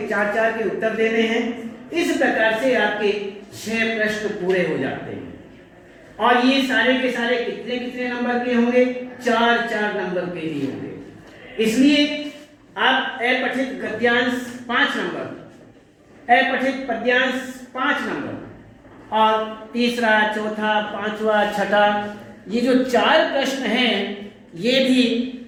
के उत्तर देने हैं। इस प्रकार से आपके 6 प्रश्न पूरे हो जाते हैं और ये सारे के सारे कितने नंबर के होंगे? 4-4 नंबर के ही होंगे। इसलिए आप अपठित गद्यांश 5 नंबर, अपठित पद्यांश 5 नंबर और तीसरा, चौथा, 5वां, 6ठा ये जो 4 प्रश्न हैं ये भी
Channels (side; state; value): both; identical; correlation 1.00